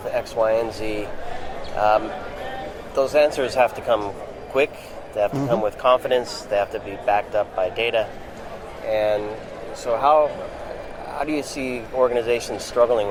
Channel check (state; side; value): identical; both; correlation 1.00